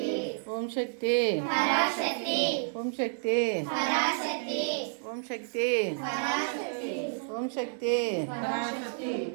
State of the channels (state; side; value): silent; left; 58 dB below the other